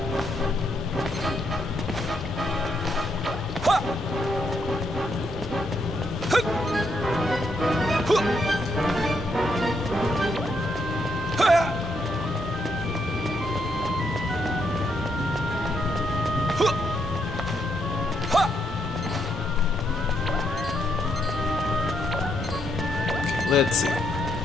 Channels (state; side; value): normal; both; correlation 0.77